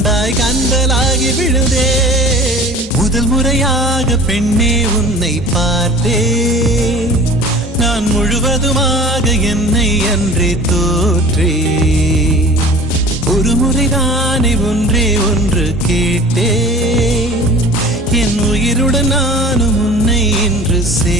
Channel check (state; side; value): normal; both; correlation 0.42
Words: கந்தலாகி விழுந்தேன். முதல் முறையாக பெண்ணே உன்னை பார்த்தேன், நான் முழுவதுமாக என்னை அன்றே தோற்றேன். ஒரு முறைதானே ஒன்றே ஒன்று கேட்டேன், என் உயிருடன் நானும் உன்னை இன்று